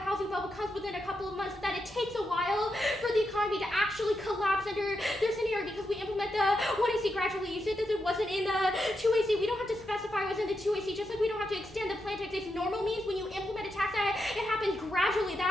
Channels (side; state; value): both; normal; correlation 0.85